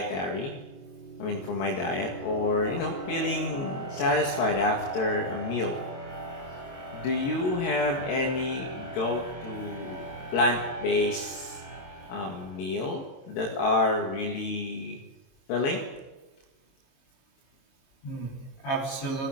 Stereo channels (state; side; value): late; right; 22 ms